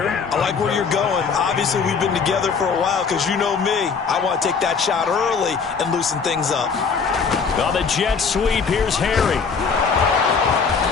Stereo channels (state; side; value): quieter; right; 5.6 dB